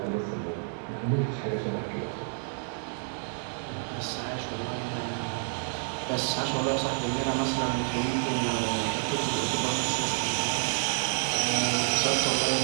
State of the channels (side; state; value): left; silent; 59 dB below the other